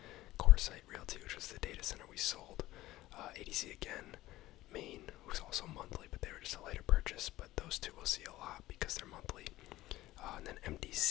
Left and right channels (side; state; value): right; quieter; 16.6 dB